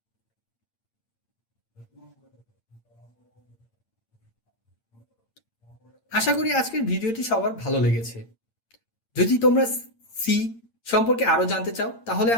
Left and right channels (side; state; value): right; late; 8.8 ms